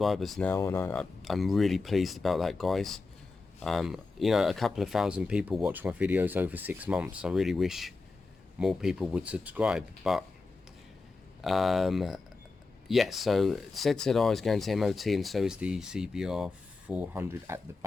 now, and I'm really pleased about that, guys. You know, a couple of thousand people watch my videos over 6 months. I really wish more people would subscribe, but yes, so zzr is going to MOT, and so is the CBR 400 at the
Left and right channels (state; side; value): quieter; right; 3.9 dB